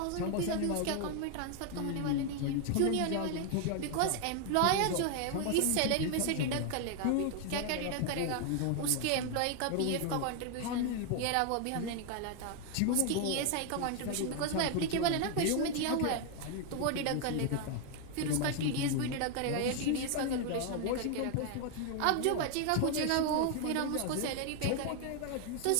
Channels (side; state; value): both; different; correlation 0.00